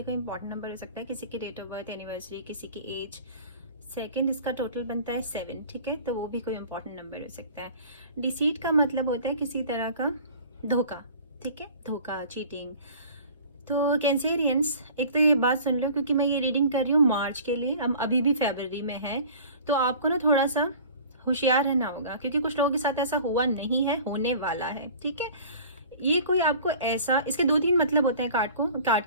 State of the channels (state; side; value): inverted; both; correlation -0.45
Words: कोई important number हो सकता है। किसी की date of birth, anniversary, किसी की एज, सेकंड, इसका टोटल बनता है 7। ठीक है, तो वो भी कोई इंपॉर्टेंट नंबर हो सकता है। डिसीट का मतलब होता है किसी तरह का धोखा। ठीक है, धोखा, चीटिंग। तो कैंसेरियंस, एक तो ये बात सुन लो, क्योंकि मैं ये रीडिंग कर रही हूँ मार्च के लिए, हम अभी भी फरवरी में है, तो आपको ना थोड़ा सा होशियार रहना होगा, क्योंकि कुछ लोगों के साथ ऐसा हुआ नहीं है, होने वाला है। ठीक है, ये कोई आपको ऐसा, इसके 2-3 मतलब होते हैं कार्ड